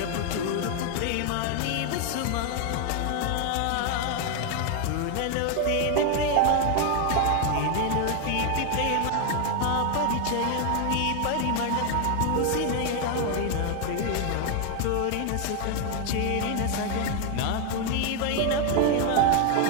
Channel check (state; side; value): different; both; correlation 0.01